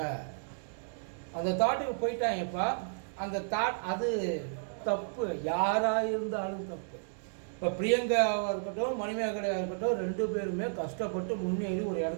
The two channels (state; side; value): silent; left; digital silence